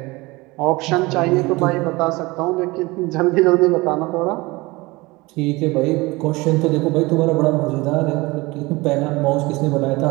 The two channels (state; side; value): quieter; left; 22.6 dB